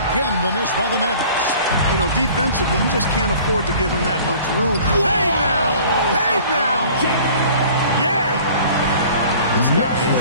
the miss by the Mavericks. You know, defensively, you just can't afford to give him that much room. Hey now! Hey now! Yeah! This guy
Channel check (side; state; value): both; inverted; correlation -0.48